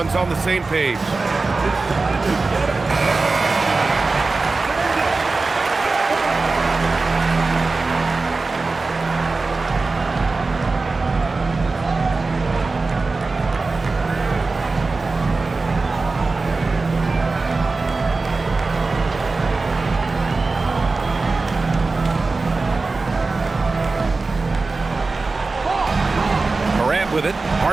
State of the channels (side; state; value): left; quieter; 3.7 dB